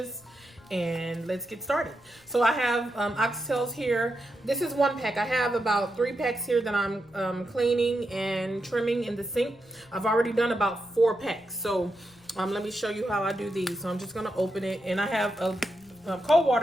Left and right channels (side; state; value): left; noise; rumble, 30 dB below the sound